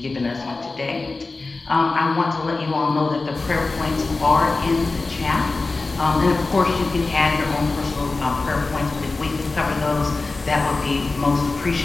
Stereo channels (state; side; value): quieter; right; 3.6 dB